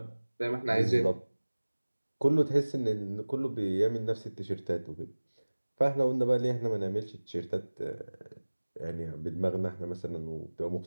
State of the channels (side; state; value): both; inverted; correlation -1.00